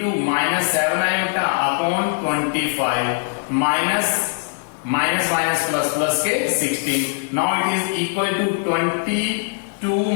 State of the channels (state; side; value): silent; right; 56 dB below the other